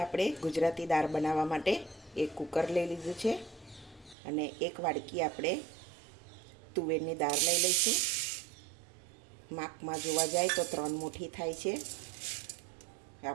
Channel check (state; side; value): drops out; left; at 4.2 s